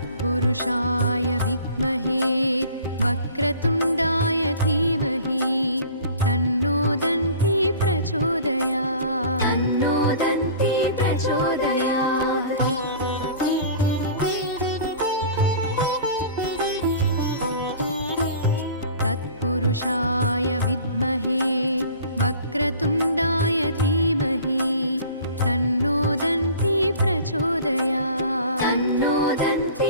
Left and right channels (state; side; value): inverted; both; correlation -0.45